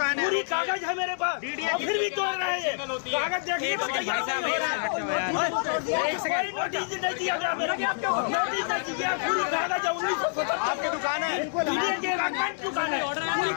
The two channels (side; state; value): right; silent; 60 dB below the other